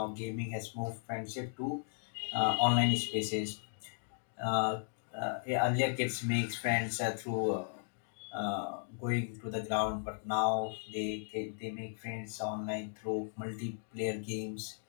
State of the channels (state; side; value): silent; right; digital silence